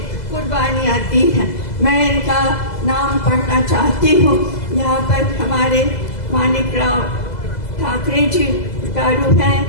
कुर्बानियाँ दी हैं। मैं इनका नाम पढ़ना चाहती हूँ। यहाँ पर हमारे मानिकराव ठाकरे जी गारू हैं,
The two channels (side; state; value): right; late; 2.0 ms